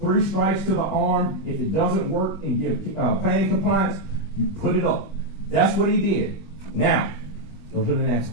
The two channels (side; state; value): right; late; 20 ms